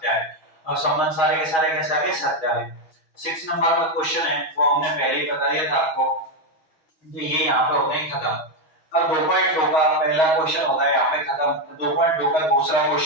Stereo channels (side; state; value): right; late; 6.2 ms